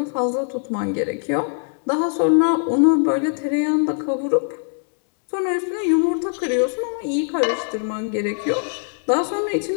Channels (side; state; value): right; silent; 64 dB below the other